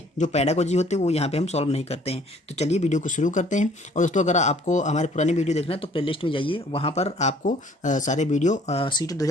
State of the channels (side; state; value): both; normal; correlation 0.57